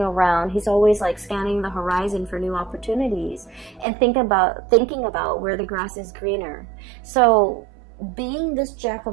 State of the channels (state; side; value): drops out; left; at 3.9 s